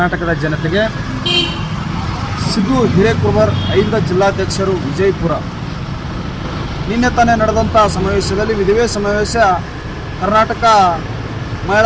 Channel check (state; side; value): identical; both; correlation 1.00